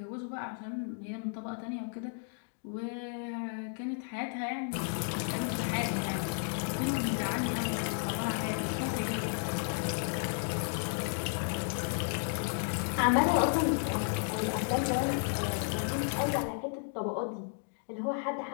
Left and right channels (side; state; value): right; silent; 56 dB below the other